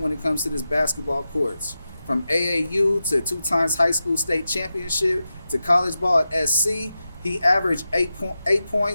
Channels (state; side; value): inverted; both; correlation -0.91